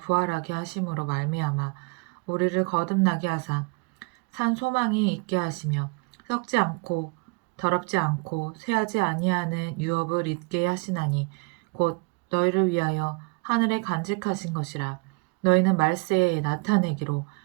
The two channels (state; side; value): quieter; left; 31.0 dB